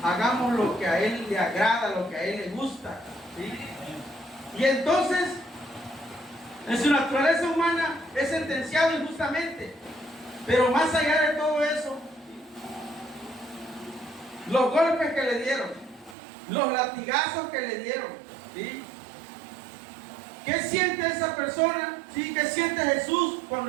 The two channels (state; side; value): drops out; left; at 16.2 s